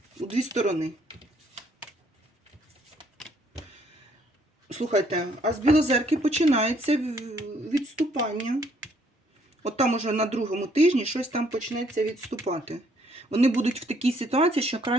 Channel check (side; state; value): both; normal; correlation 0.67